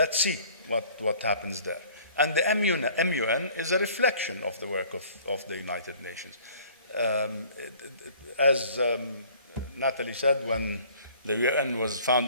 see what happens there. And the MUN is a reflection of the work of the United Nations. As Natalie said, when the UN was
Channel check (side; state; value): both; inverted; correlation -0.53